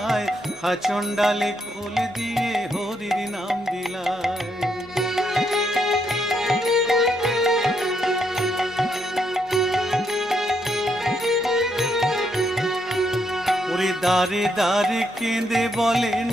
হাচন্ডালে কোল দিয়ে হরির নাম বিলায়। দারে দারে কেঁদে বলে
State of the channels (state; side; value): normal; both; correlation 0.76